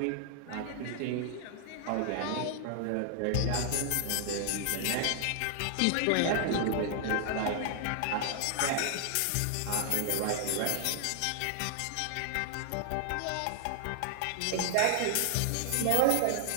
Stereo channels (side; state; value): both; different; correlation -0.01